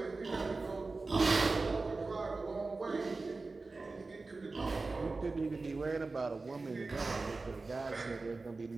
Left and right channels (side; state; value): left; quieter; 3.7 dB